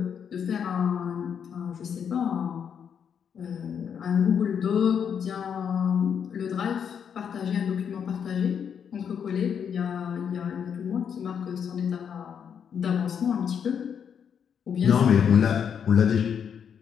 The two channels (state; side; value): quieter; right; 7.6 dB